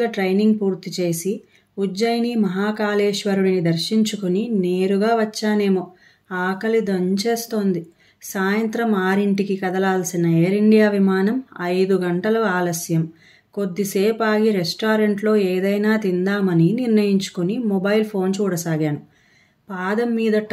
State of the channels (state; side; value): identical; both; correlation 1.00